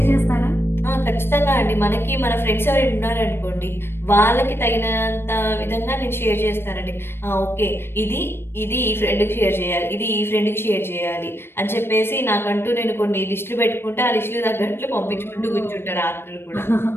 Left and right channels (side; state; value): right; late; 0.11 ms